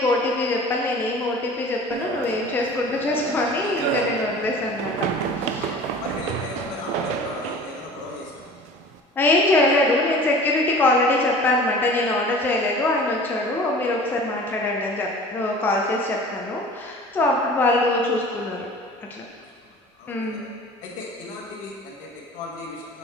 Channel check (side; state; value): both; normal; correlation 0.42